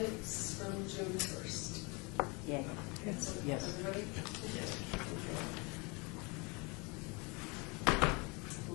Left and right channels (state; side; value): quieter; right; 29.0 dB